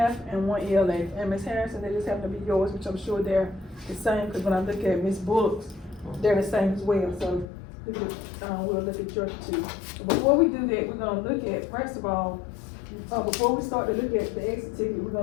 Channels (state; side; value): drops out; right; at 7.5 s